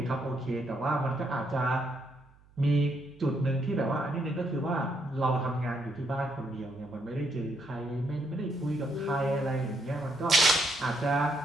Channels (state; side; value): noise; right; hum, 28 dB below the sound